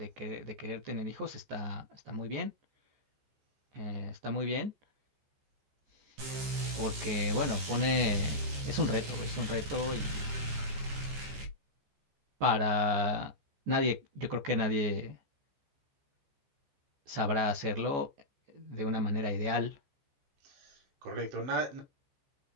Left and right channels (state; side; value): late; left; 14 ms